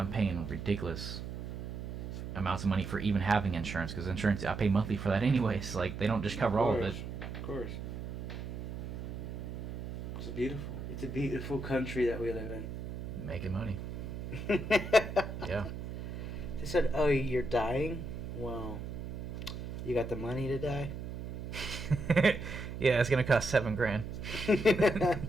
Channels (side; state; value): right; noise; hum, 7 dB below the sound